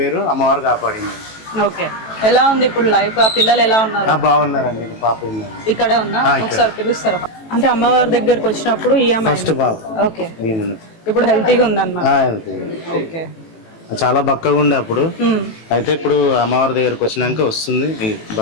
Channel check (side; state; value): right; late; 18 ms